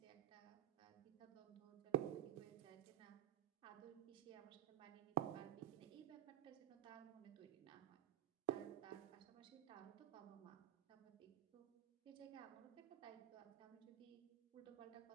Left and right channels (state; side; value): quieter; left; 12.2 dB